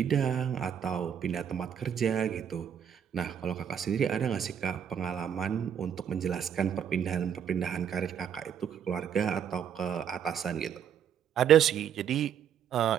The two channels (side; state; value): left; quieter; 8.6 dB